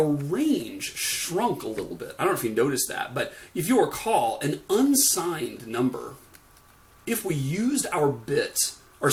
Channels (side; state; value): both; identical; correlation 1.00